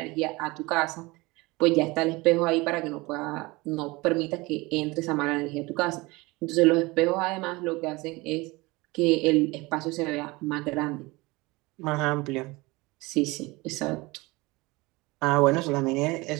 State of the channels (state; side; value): quieter; left; 23.0 dB